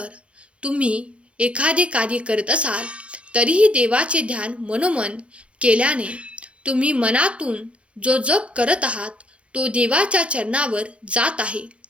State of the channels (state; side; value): late; left; 0.060 ms